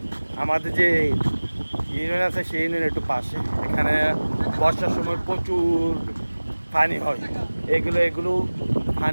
আমাদের যে ইউনিয়ন আছে সেই ইউনিয়নের একটু পাশে। এখানে বর্ষার সময় প্রচুর পানি হয়। এগুলো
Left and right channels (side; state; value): both; inverted; correlation -1.00